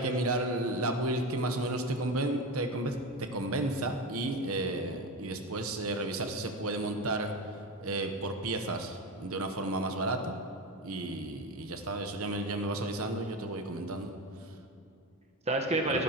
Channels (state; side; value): normal; both; correlation 0.21